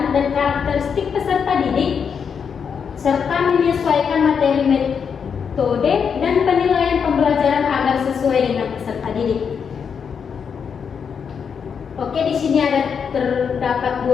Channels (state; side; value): quieter; right; 6.7 dB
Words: dan karakteristik peserta didik serta menyesuaikan materi, metode, dan penilaian pembelajaran agar sesuai dengan peserta didik. Oke, di sini terdapat